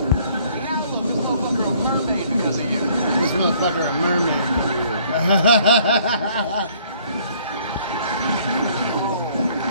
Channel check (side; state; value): both; inverted; correlation -0.60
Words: This motherfucker a mermaid for you.